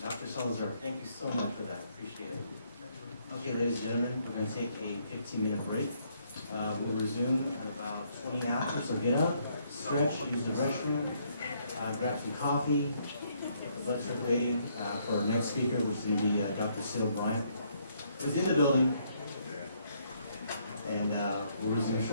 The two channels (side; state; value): both; inverted; correlation -0.70